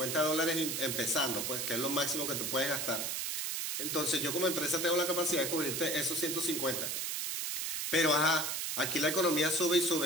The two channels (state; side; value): noise; right; hiss, 1 dB below the sound